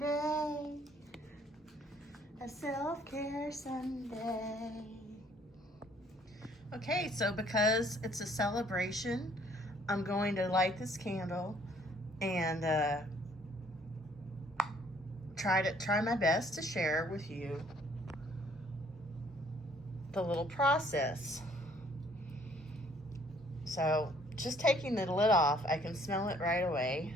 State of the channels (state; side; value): normal; both; correlation 0.61